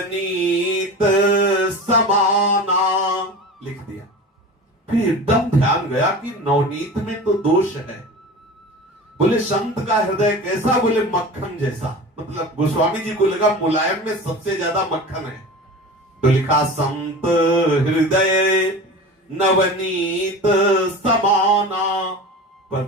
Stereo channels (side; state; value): both; normal; correlation 0.33